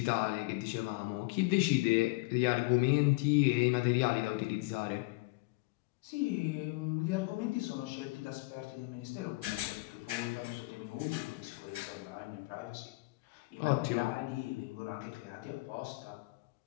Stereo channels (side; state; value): right; quieter; 24.7 dB